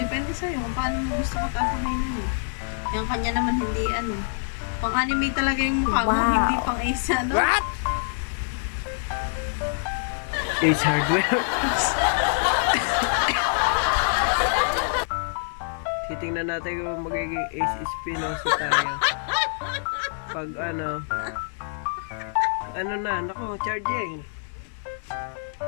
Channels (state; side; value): silent; right; digital silence